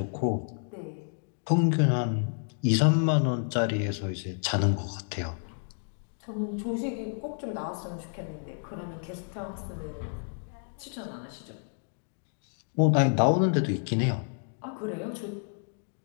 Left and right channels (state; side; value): silent; right; 58 dB below the other